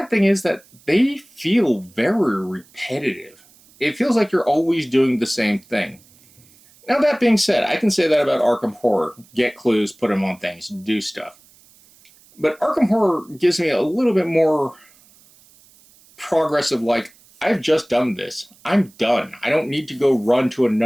thing is that they feel very repetitive. It feels like you're always doing the same thing. Now that being said, I can say that about Arkham Horror. Get clues, put them on things, do stuff. But Arkham Horror gives me a little bit more progress of like, I've just done this. I'm done. I don't need to go run to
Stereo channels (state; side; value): noise; right; hiss, 28 dB below the sound